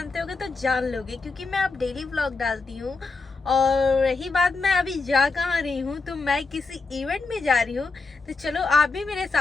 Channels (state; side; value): quieter; right; 4.0 dB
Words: होगे तो जान लोगे, क्योंकि मैं अब डेली व्लॉग डालती हूँ। और रही बात मैं अभी जा कहाँ रही हूँ, तो मैं किसी इवेंट में जा रही हूँ। तो चलो आप भी मेरे